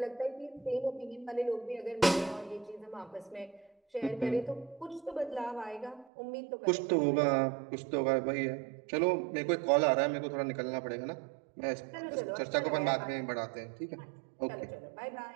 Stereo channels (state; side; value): drops out; left; at 6.1 s